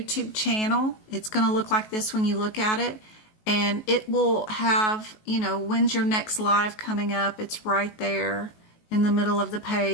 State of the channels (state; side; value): late; right; 19 ms